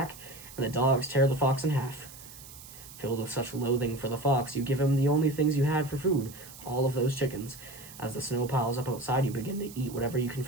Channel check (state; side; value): noise; right; hiss, 17 dB below the sound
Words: and the dogs tear the fox in half. Filled with such loathing for the fox, you give him the only things you had for food, all of those chickens. As the snow piles up outside, you begin to eat whatever you can